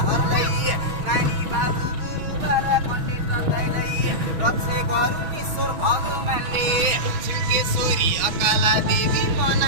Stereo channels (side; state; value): left; late; 6.3 ms